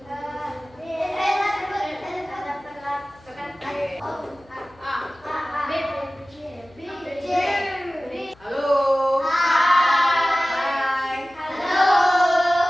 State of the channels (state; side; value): noise; left; hum, 28 dB below the sound